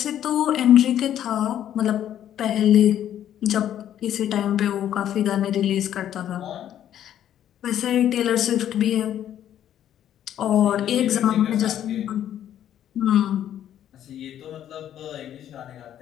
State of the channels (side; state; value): right; quieter; 10.8 dB